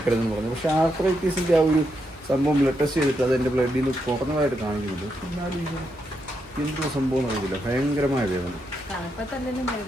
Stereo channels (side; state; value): both; normal; correlation 0.82